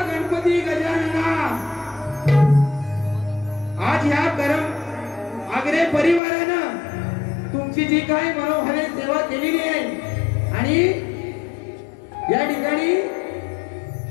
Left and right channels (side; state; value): right; drops out; at 6.2 s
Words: गणपती गजानना, आज या गरम आगरे परिवारानं तुमची जी काही मनोभावे सेवा केलेली आहे आणि या ठिकाणी